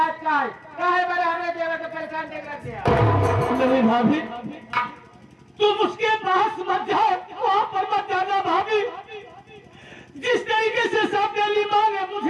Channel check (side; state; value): both; identical; correlation 1.00